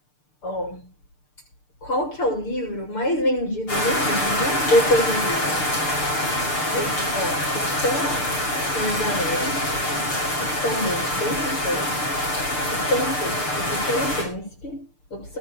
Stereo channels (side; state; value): right; late; 6.7 ms